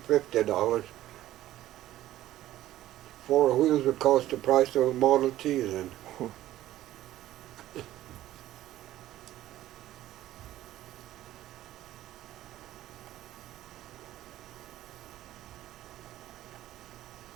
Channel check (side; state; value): left; quieter; 14.1 dB